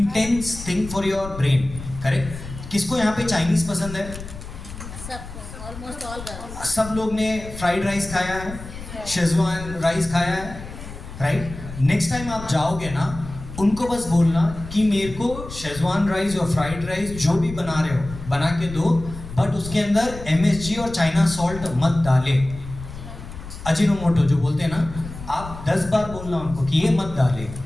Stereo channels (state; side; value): noise; left; rumble, 12 dB below the sound